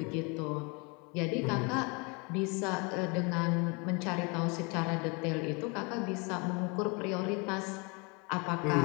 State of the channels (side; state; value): right; quieter; 30.6 dB